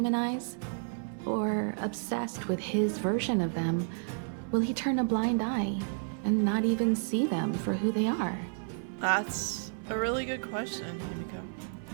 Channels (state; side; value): silent; left; 57 dB below the other